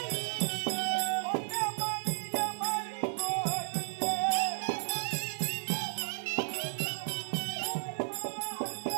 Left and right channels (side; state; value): left; silent; digital silence